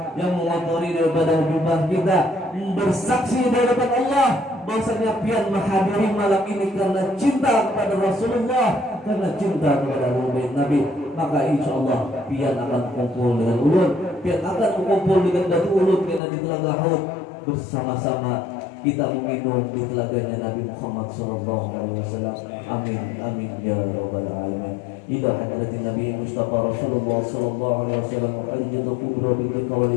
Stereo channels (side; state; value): right; drops out; at 16.2 s